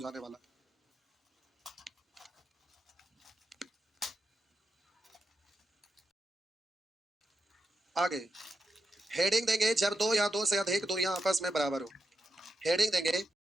वाला। आगे हेडिंग देंगे जब दो या दो से अधिक दूरियां आपस में बराबर हो। हेडिंग देंगे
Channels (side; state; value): both; normal; correlation 0.87